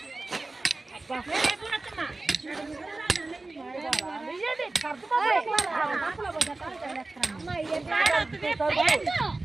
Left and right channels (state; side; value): quieter; left; 3.2 dB